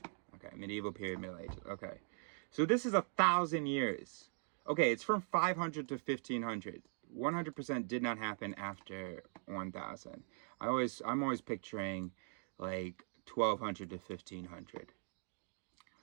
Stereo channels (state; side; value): silent; left; 50 dB below the other